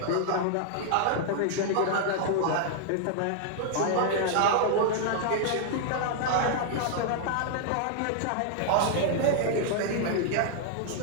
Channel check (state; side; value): different; both; correlation -0.01